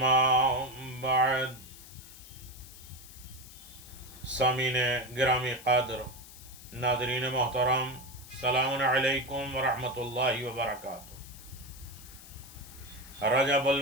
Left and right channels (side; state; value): left; noise; hiss, 18 dB below the sound